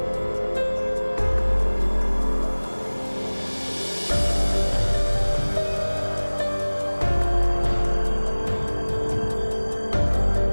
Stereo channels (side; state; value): both; inverted; correlation -1.00